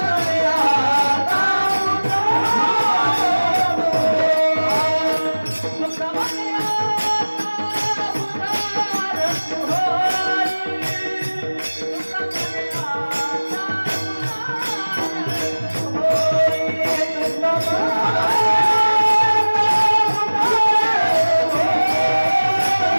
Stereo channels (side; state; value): both; inverted; correlation -1.00